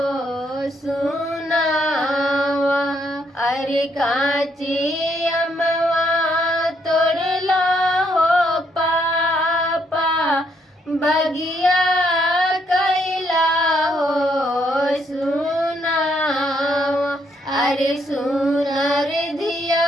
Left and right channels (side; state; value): both; normal; correlation 0.73